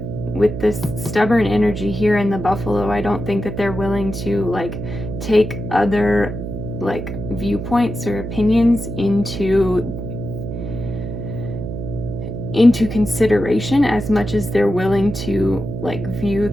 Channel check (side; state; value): right; noise; hum, 6 dB below the sound